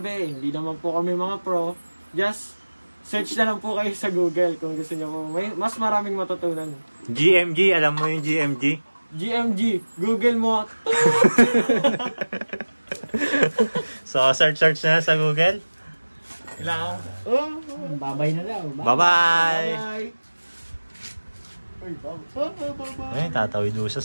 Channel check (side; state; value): both; inverted; correlation -1.00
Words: hindi naman po kami mga pro, just search na lang po kayo sa Google kung gusto niyo po. May mas maraming matutunan. GMG, alam mo yung GMG? GMG, Google mo. So, search na sa Google. Kailangan. Babay na daw. Bye-bye! Bye! Uy, bye! Ay, tatawid doon siya